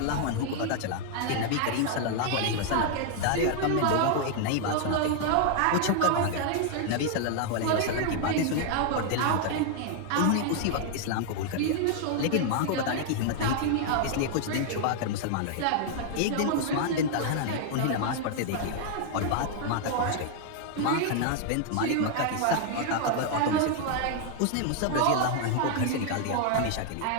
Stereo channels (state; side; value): different; both; correlation 0.00